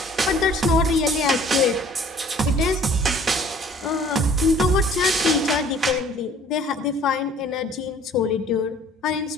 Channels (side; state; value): both; normal; correlation 0.53